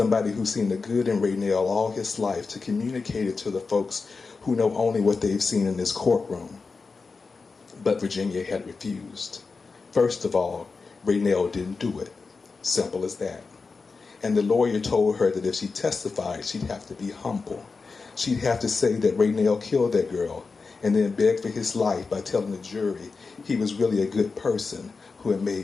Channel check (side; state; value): right; quieter; 4.5 dB